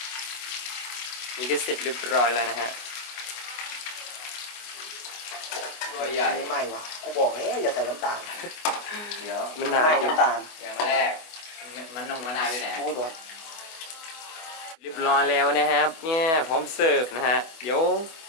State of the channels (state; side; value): late; right; 25 ms